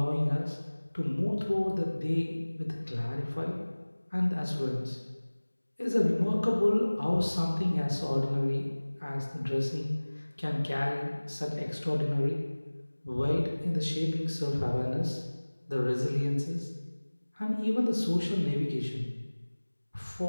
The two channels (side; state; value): both; inverted; correlation -1.00